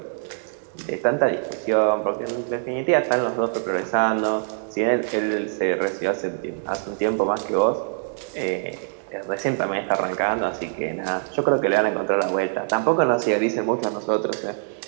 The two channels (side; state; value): left; silent; digital silence